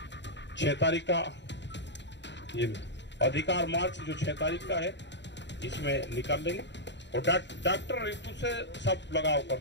6 तारीख का ये अधिकार मार्च जो 6 तारीख का है, इसमें निकाल लेंगे। और डॉक्टर रितु से सब लगाव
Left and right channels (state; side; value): late; right; 0.52 ms